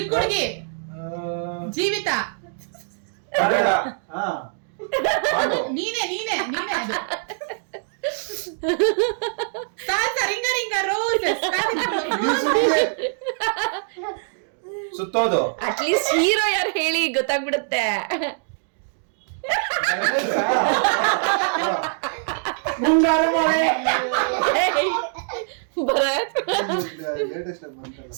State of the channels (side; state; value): left; silent; digital silence